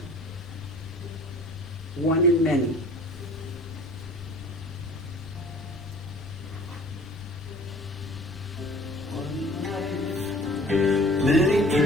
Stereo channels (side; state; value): both; normal; correlation 0.47